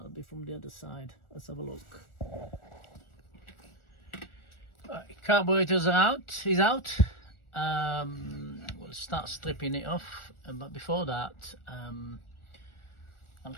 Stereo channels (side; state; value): right; late; 1.4 ms